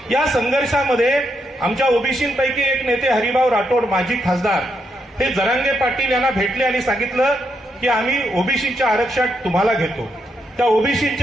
या संघर्षामध्ये आमच्या ओबीसींपैकी एक नेते हरिभाऊ राठोड, माजी खासदार, हे जरांगे पाटील यांना भेटले आणि सांगितलं की आम्ही ओबीसीच्या आरक्षण तुम्हाला घेतो, त्या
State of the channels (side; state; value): both; normal; correlation 0.80